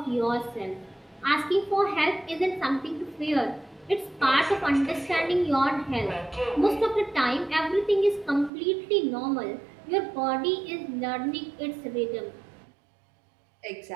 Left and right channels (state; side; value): drops out; left; at 8.5 s